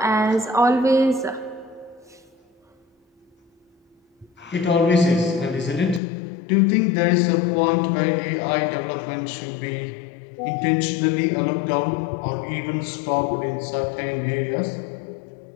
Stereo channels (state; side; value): drops out; right; at 6.0 s